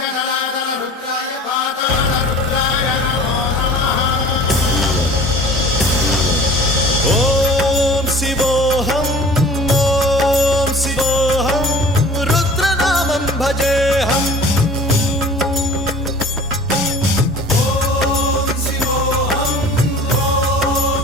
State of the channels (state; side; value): normal; both; correlation 0.44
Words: जलातल रुद्राय पाताल रुद्राय नमो नमः। ओम शिवोऽहं रुद्रनामं भजेऽहम्।